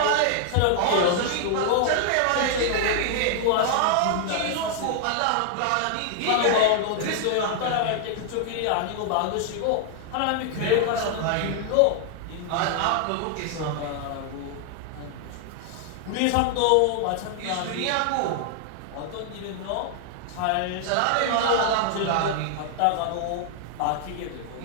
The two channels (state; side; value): different; both; correlation 0.00